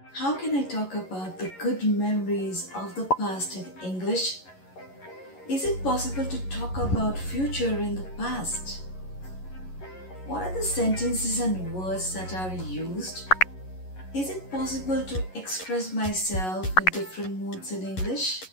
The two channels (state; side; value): late; right; 11 ms